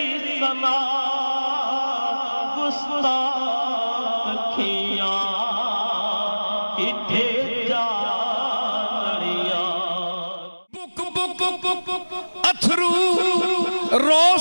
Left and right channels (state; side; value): inverted; both; correlation -1.00